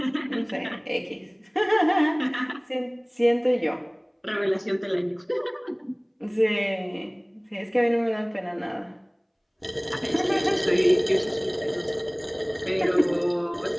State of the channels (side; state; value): both; identical; correlation 1.00